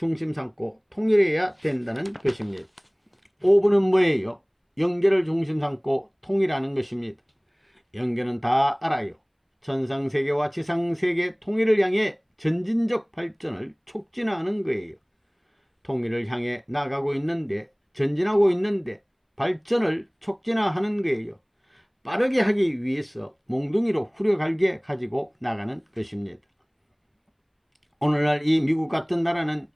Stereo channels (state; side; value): identical; both; correlation 1.00